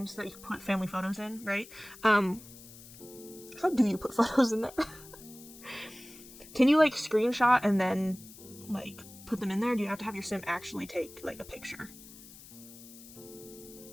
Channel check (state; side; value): noise; left; hiss, 18 dB below the sound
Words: that you put family photos in, right? How do you put photos in there? Can you, like, screenshot and then, like, put them in there? Or do you have to have your sim actually take, like, a picture?